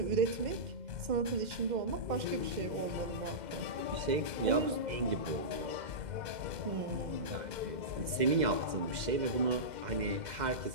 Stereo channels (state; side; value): late; left; 2.1 ms